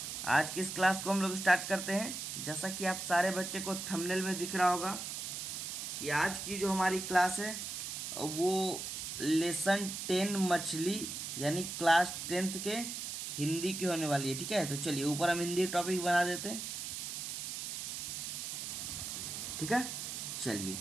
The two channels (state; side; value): noise; right; hiss, 5 dB below the sound